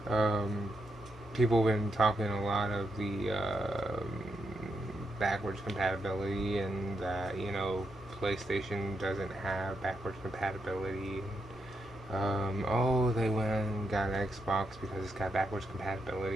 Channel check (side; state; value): both; normal; correlation 0.82